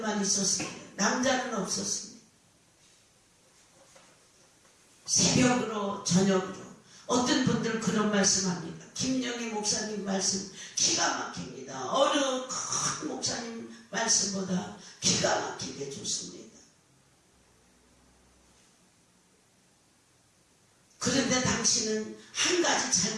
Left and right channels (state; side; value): identical; both; correlation 1.00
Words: 있었습니다. 남자는 없었습니다. 새벽으로 저녁으로 어떤 분들은 그런 말씀합니다. 김영희 목사님 말씀 기가 막힙니다. 어느 큰 목사님 말씀보다 기가 막히게 좋습니다. 그런데 당신은 한 가지